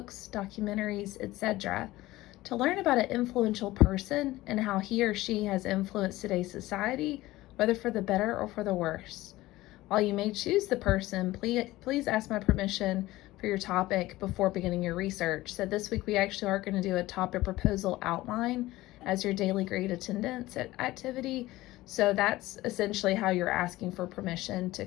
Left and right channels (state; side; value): quieter; right; 17.7 dB